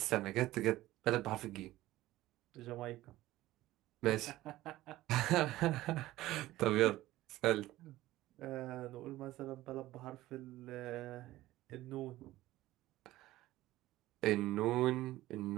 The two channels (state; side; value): quieter; left; 16.3 dB